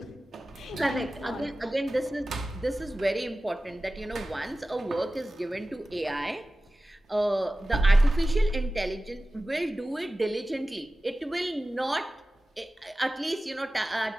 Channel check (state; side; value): normal; both; correlation 0.96